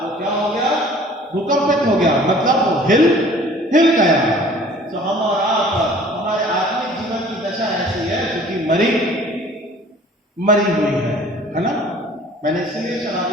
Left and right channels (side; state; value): both; normal; correlation 0.50